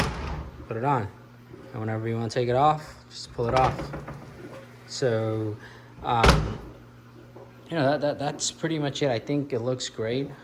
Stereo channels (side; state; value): both; identical; correlation 1.00